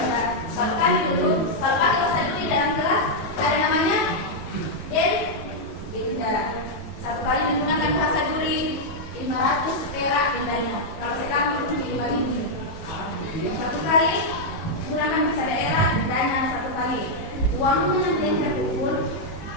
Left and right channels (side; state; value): right; late; 18 ms